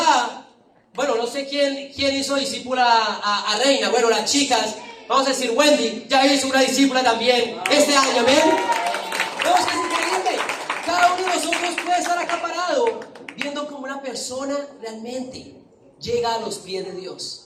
bueno, no sé quién hizo discípula a Reina, bueno, las chicas, vamos a decir Wendy, ya hizo una discípula también este año, amén. No, es que es increíble. Cada uno de nosotros puede estar acaparado viendo cómo una persona realmente llega a los pies de Dios.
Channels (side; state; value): both; identical; correlation 1.00